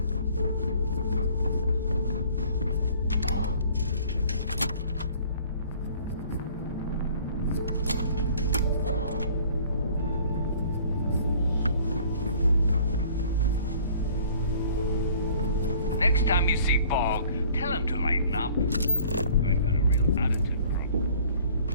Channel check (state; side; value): inverted; both; correlation -0.54